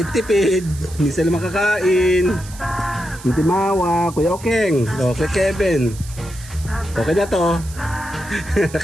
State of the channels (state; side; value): noise; right; hiss, 17 dB below the sound